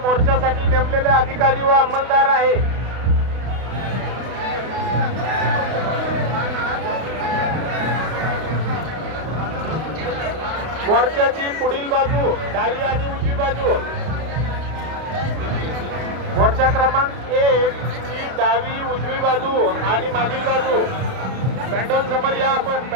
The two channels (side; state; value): left; late; 32 ms